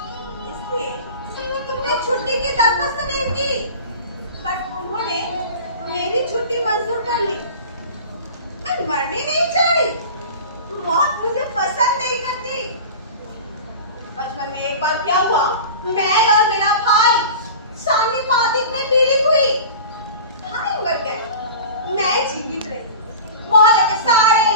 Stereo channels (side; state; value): both; inverted; correlation -0.35